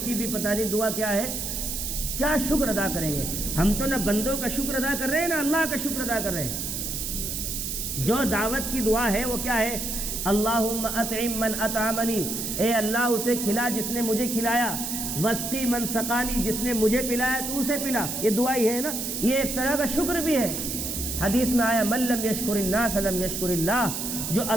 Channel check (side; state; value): right; noise; hiss, 4 dB below the sound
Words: کی بھی پتہ نہیں دعا کیا ہے. کیا شکر ادا کریں گے؟ ہم تو نہ بندوں کا شکر ادا کر رہے ہیں، نہ اللہ کا شکر ادا کر رہے ہیں. جو دعوت کی دعا ہے وہ کیا ہے؟ اللہم اطعم من اطعمنی، اے اللہ اسے کھلا جس نے مجھے کھلایا. واسقی من سقانی، جس نے مجھے پلایا تو اسے پلا. یہ دعا ہی ہے نا، یہ ایک طرح کا شکر بھی ہے. حدیث میں آیا من لم یشکر الناس لم یشکر اللہ، جو